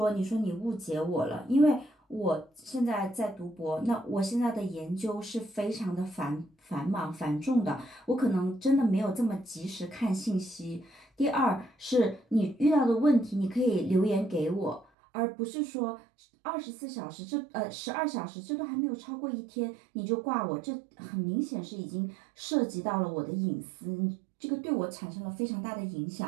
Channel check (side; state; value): left; drops out; at 14.9 s